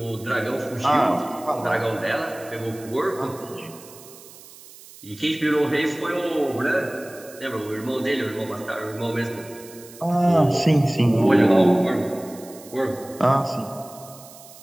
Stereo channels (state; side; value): noise; right; hiss, 20 dB below the sound